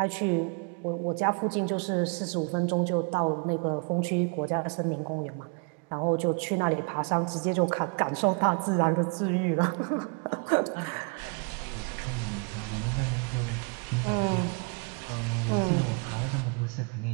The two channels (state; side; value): quieter; left; 34.1 dB